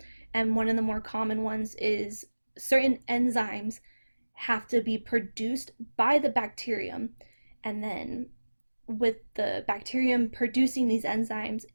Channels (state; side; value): inverted; both; correlation -1.00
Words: And one of the more common ones is certain enzymes have to be produced by the bacterium. And then with the bacterium producing these enzymes,